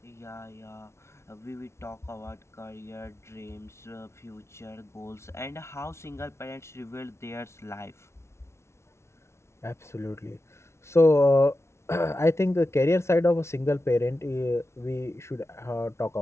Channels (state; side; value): late; right; 0.13 ms